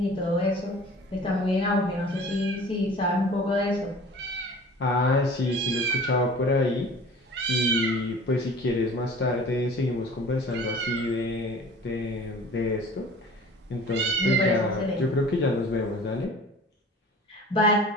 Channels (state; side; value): normal; both; correlation 0.44